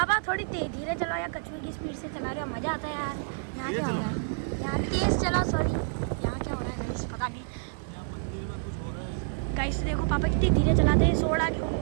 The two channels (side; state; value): left; silent; 55 dB below the other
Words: थोड़ी धीरे चलाओ या कछुए की स्पीड से चला रहे हो, मजा आता है यार। यहाँ क्या हो रहा है? यहाँ तेज चलाओ। सॉरी, यहाँ क्या हो रहा है गाइस? पता नहीं। यहाँ मंदिर में कुछ हो रहा है गाइस देखो पापा कितनी धीरे चलाते हैं।